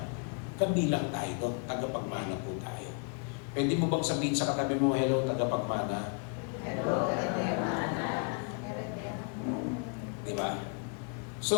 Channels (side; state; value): right; quieter; 38.0 dB